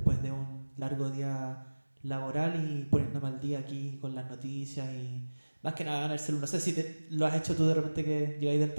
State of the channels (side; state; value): both; inverted; correlation -1.00